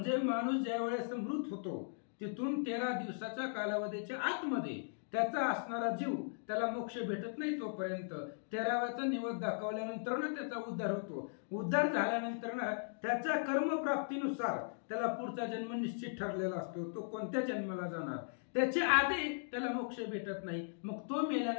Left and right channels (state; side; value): silent; right; digital silence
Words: माणूस ज्या वेळेस मृत होतो तिथून 13 दिवसाच्या कालावधीच्या आतमध्ये त्याचा असणारा जीव त्याला मोक्ष भेटत नाही. तोपर्यंत 13व्याचा निवद दाखवल्यानंतर त्याचा उद्धार होतो. उद्धार झाल्यानंतर त्याच्या कर्मप्राप्तीनुसार त्याला पुढचा जन्म निश्चित ठरलेला असतो. तो कोणत्या जन्माला जाणार त्याच्या आधी त्याला मोक्ष भेटत नाही. मग तो